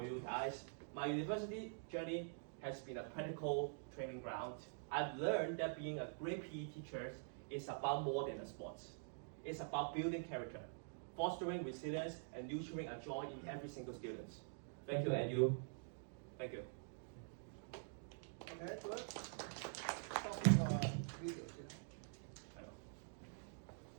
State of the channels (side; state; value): left; silent; digital silence